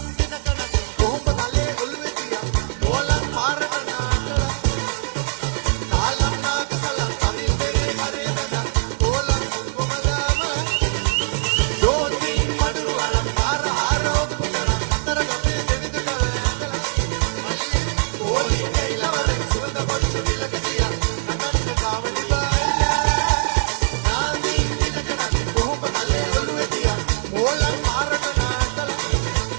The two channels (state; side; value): silent; left; digital silence